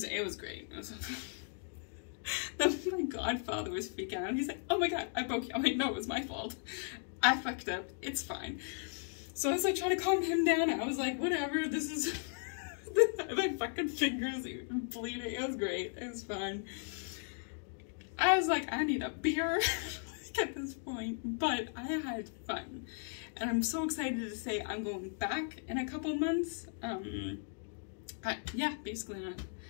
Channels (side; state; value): right; silent; 53 dB below the other